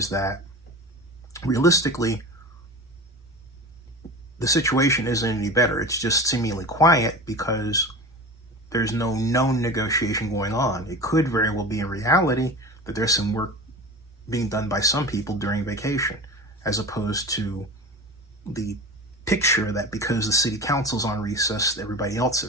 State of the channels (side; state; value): both; normal; correlation 0.32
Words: that realistically, the situation isn't any better. It's just seemingly quiet because there's no known negotiation going on. It could very well be in reality that there's some work being done by some people during vacation, as opposed to the picture that because the city council's on recess, everybody else